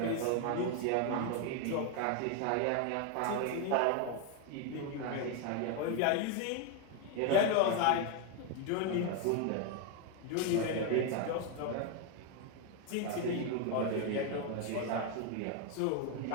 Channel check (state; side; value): different; both; correlation 0.01